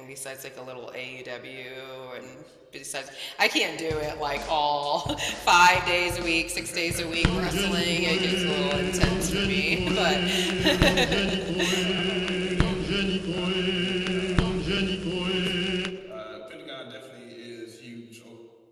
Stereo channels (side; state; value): both; identical; correlation 1.00